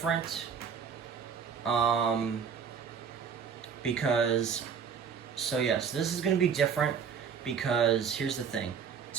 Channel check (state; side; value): quieter; left; 6.9 dB